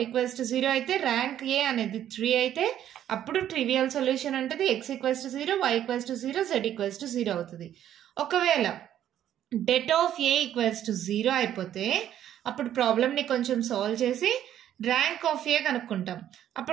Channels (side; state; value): left; quieter; 11.0 dB